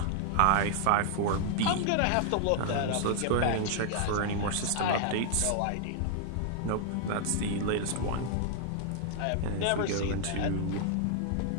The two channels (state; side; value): different; both; correlation 0.00